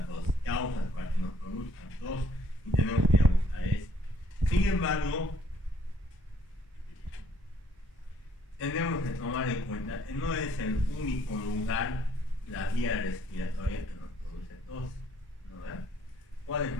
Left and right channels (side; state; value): both; normal; correlation 0.64